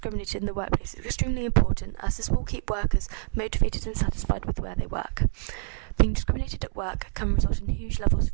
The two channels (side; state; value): left; silent; digital silence